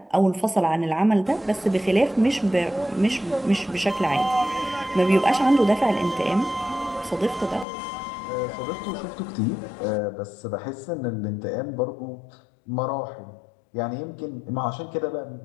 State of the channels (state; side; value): drops out; right; at 7.7 s